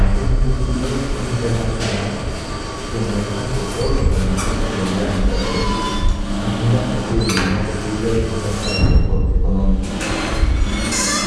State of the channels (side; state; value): both; identical; correlation 1.00